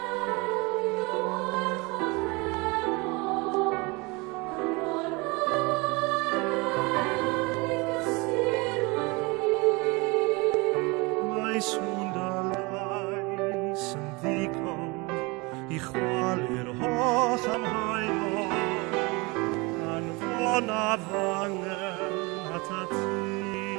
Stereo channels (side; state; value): left; quieter; 26.4 dB